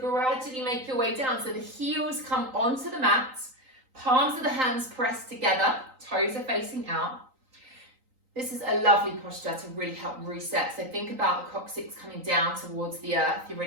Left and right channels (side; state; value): left; late; 3.9 ms